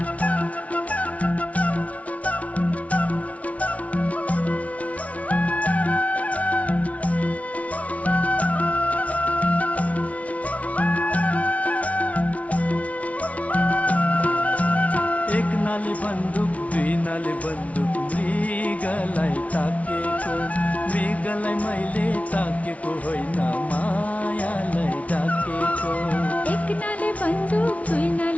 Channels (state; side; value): late; right; 0.066 ms